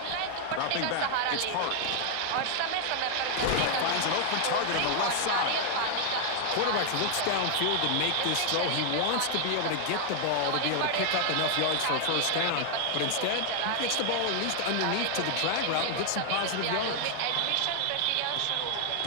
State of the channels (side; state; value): both; different; correlation 0.00